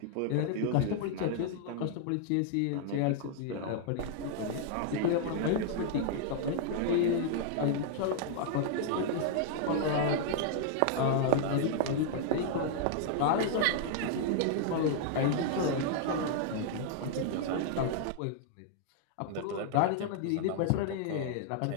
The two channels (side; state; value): both; different; correlation 0.00